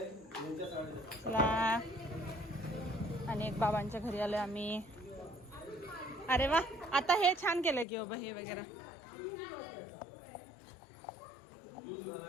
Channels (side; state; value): right; drops out; at 7.9 s